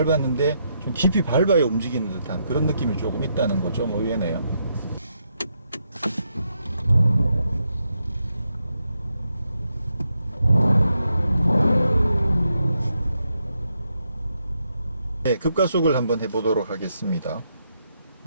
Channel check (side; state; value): both; inverted; correlation -0.80